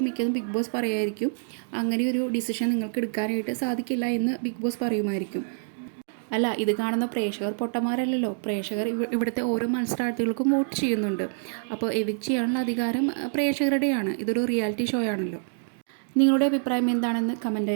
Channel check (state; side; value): silent; left; digital silence